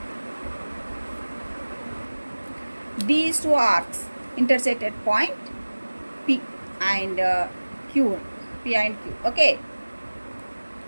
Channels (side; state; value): both; inverted; correlation -1.00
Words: These 2 arcs intersect at point P and Q. P and Q. Okay.